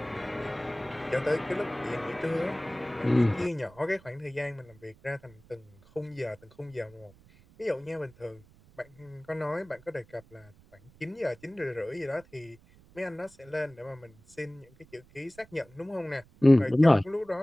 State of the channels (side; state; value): right; noise; rumble, 26 dB below the sound